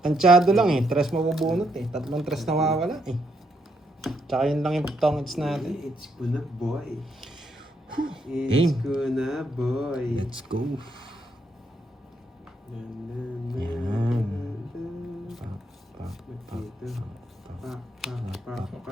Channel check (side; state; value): both; normal; correlation 0.76